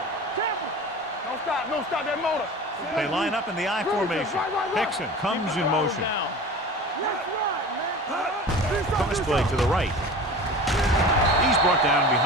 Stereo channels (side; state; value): both; normal; correlation 0.37